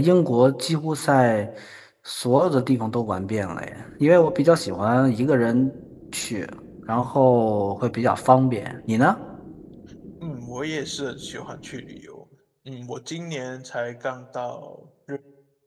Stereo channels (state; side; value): identical; both; correlation 1.00